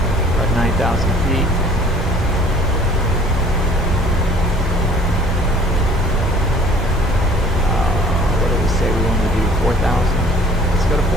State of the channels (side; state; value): both; normal; correlation 0.52